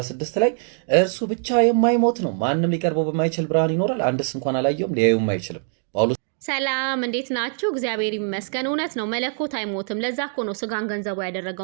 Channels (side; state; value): left; silent; 62 dB below the other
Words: ላይ እርሱ ብቻ የማይሞት ነው፣ ማንም ሊቀርበው በማይችል ብርሃን ይኖራል፣ አንድስ እንኳን አላየውም ሊያዩም አይችልም። ጳውሎስ ሰላም እንዴት ናችሁ? እግዚአብሔር ይመስገን። እውነት ነው፣ መለኮት አይሞትም። ለዛ እኮ ነው ስጋን ገንዘቡ